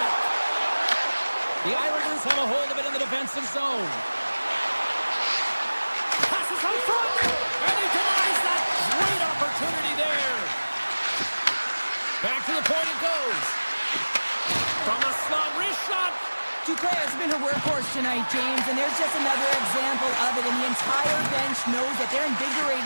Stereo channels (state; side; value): inverted; both; correlation -1.00